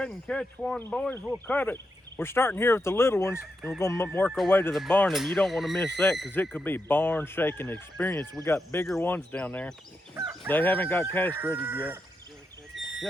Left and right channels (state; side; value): normal; both; correlation 0.85